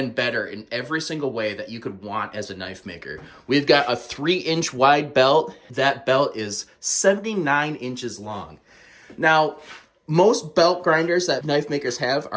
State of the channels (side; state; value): both; identical; correlation 1.00